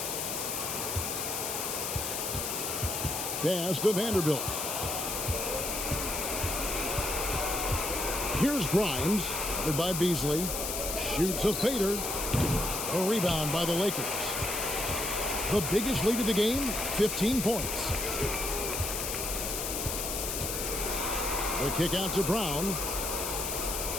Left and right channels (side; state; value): left; noise; hiss, 2 dB below the sound